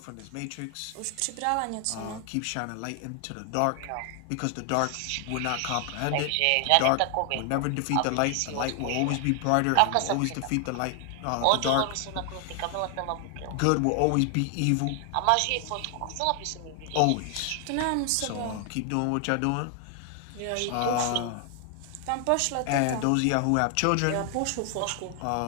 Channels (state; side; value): different; both; correlation 0.00